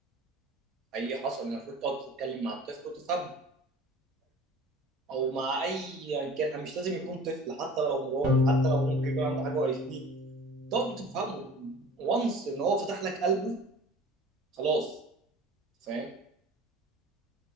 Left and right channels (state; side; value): normal; both; correlation 0.43